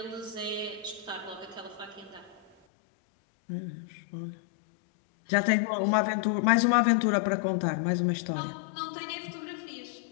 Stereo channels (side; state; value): right; drops out; at 2.5 s